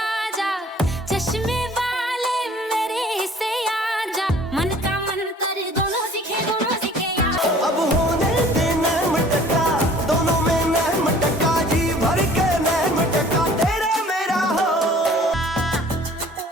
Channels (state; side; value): normal; both; correlation 0.51